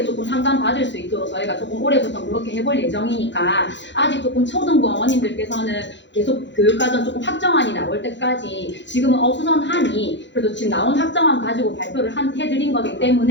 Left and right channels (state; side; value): late; right; 0.52 ms